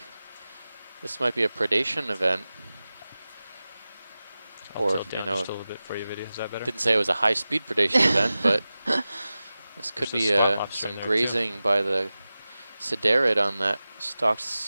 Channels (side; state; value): both; inverted; correlation -0.96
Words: This might be a predation event. I'll Or, tilt you down know, just a little bit for you, video. Is that better? didn't say it was a high-speed predation event, but this could There's be a slot lobster some in there, too. grazing by the Siderid on that stocked